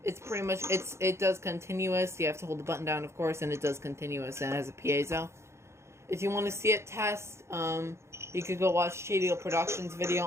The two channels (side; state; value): left; late; 0.13 ms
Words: it's pretty much, it does continuous. You have to hold the button down, of course, and it does continuous, and it has a piezo. If you want to see it test, you could go watch Shady Productions video